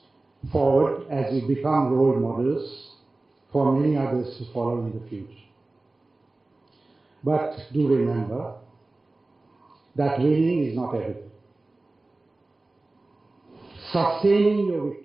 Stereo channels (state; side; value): quieter; left; 3.1 dB